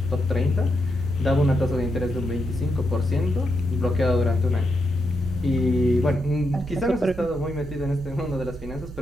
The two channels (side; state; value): both; normal; correlation 0.83